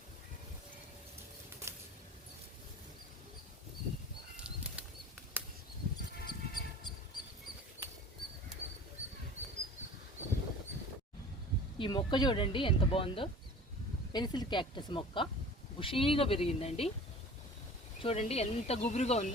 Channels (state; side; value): normal; both; correlation 0.41